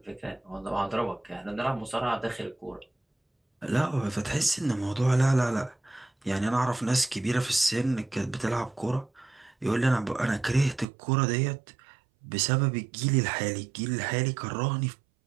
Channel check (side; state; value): left; drops out; at 10.9 s